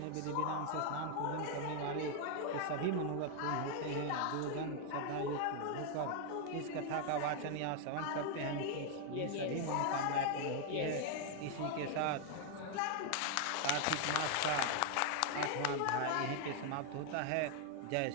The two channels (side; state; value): both; different; correlation 0.01